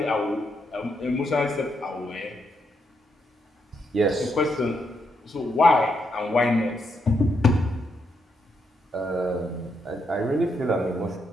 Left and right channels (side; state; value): both; normal; correlation 0.79